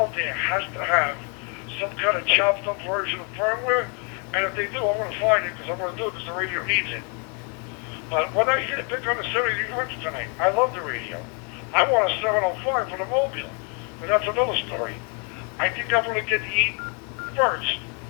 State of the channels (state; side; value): quieter; right; 36.8 dB